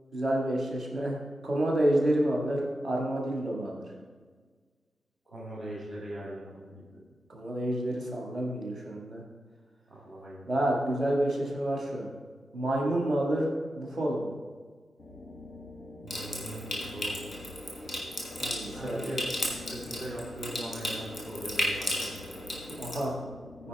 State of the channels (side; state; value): both; normal; correlation 0.88